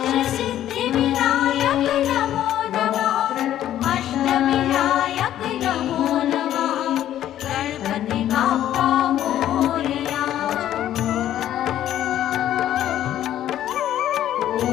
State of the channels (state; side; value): quieter; right; 11.9 dB